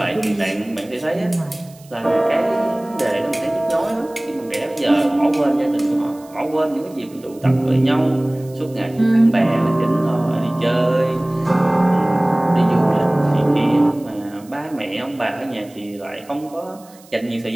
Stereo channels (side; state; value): right; noise; hiss, 25 dB below the sound